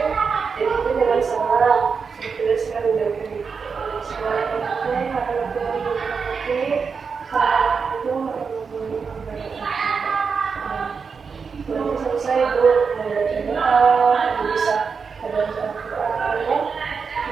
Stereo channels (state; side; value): quieter; left; 5.5 dB